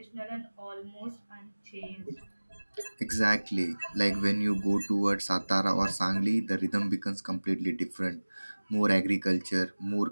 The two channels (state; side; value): inverted; both; correlation -1.00